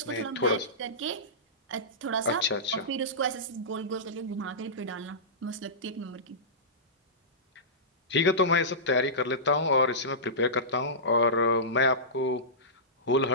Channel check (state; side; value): normal; both; correlation -0.18